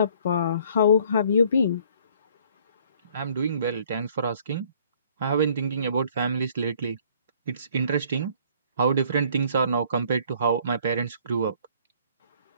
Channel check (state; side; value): inverted; both; correlation -0.58